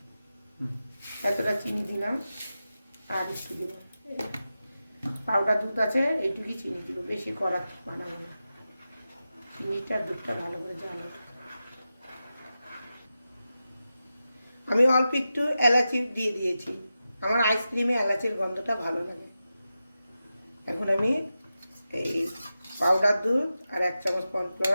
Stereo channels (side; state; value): both; inverted; correlation -0.92